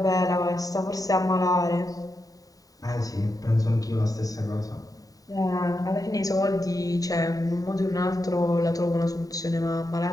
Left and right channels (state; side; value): late; right; 0.18 ms